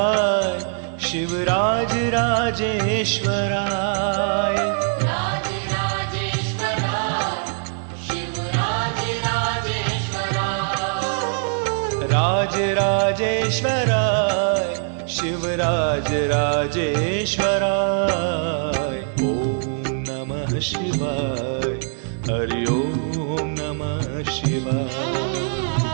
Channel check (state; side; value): silent; left; 59 dB below the other